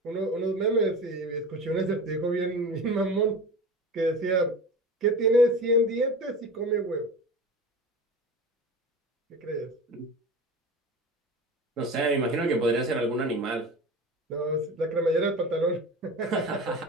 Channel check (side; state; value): both; normal; correlation 0.32